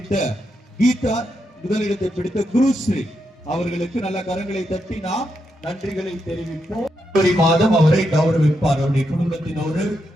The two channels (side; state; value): both; normal; correlation 0.83